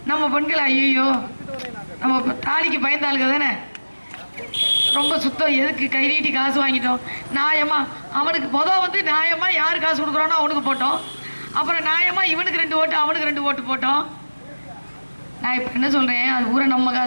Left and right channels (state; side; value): inverted; both; correlation -1.00